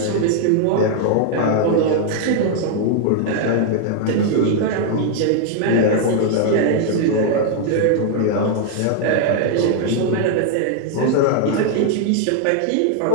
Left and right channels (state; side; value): different; both; correlation 0.00